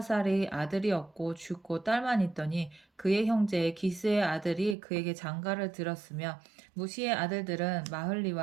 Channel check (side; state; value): left; drops out; at 4.8 s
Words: 아들이 없고 죽고 딸만 있더니 그의 형제 기스의 아들이 그에게 장가를 들었으며 무시의 아들들은